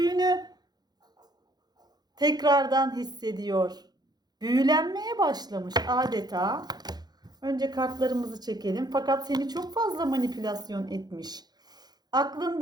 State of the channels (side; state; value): left; late; 0.20 ms